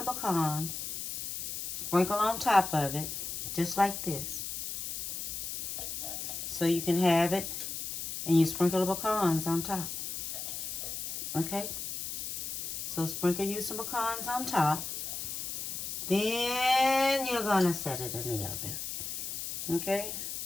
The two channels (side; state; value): left; noise; hiss, 5 dB below the sound